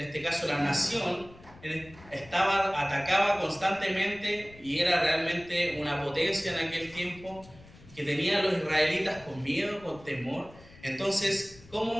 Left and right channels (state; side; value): noise; left; rumble, 22 dB below the sound